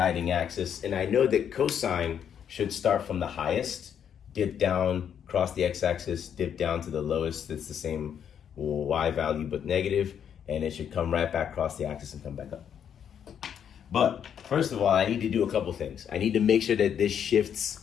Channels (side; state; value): right; quieter; 8.5 dB